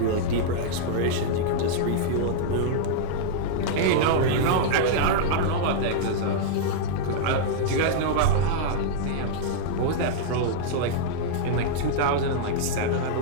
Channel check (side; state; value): both; different; correlation -0.02